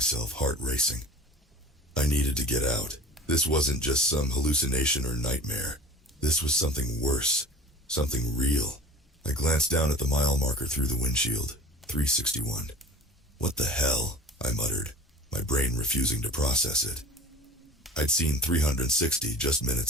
heart racing. I needed to get out. This wasn't just some hallucination or nightmare. This was something worse, something real. I glanced down at the mile marker through the windshield, 361. What the hell? I muttered, my brain refusing to process it. I'd seen 360 just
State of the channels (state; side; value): normal; both; correlation 0.40